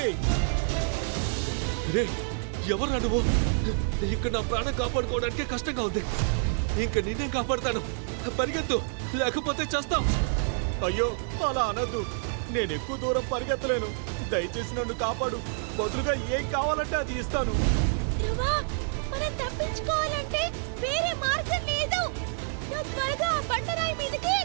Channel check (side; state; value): left; silent; digital silence